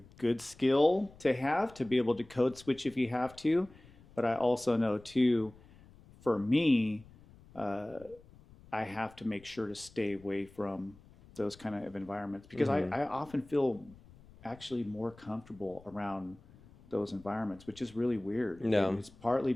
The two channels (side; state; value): left; noise; rumble, 24 dB below the sound